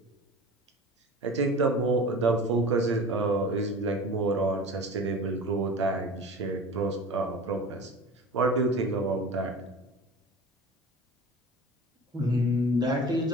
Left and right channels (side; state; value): both; normal; correlation 0.37